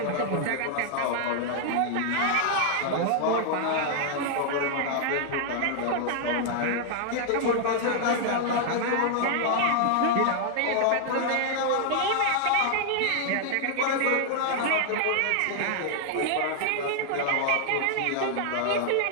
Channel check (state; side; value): different; both; correlation 0.00